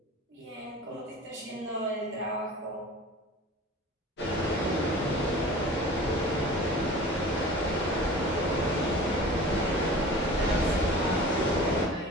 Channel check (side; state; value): both; normal; correlation 0.41